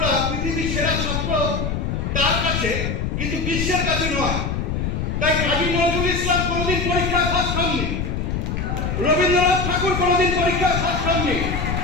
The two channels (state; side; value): noise; left; rumble, 1 dB below the sound